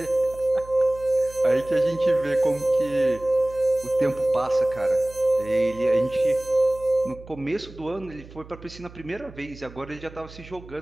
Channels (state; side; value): noise; right; hum, 19 dB below the sound